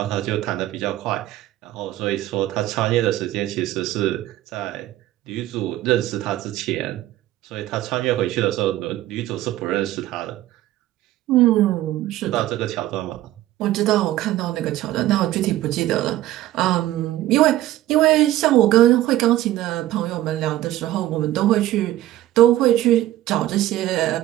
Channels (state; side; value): quieter; left; 14.7 dB